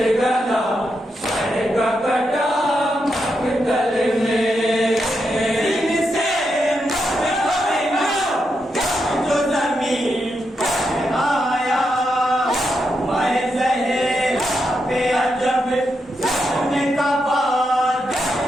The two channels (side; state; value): both; normal; correlation 0.84